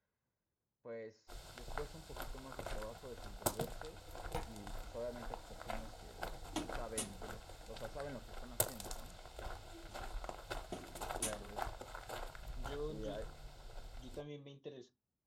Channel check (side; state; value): both; identical; correlation 1.00